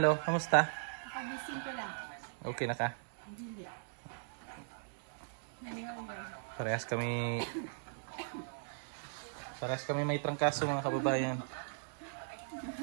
kamusta? Pagising ko lang. Okay na ka? Hindi. Parehas kami may trangkaso mga kababayan.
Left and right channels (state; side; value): silent; left; digital silence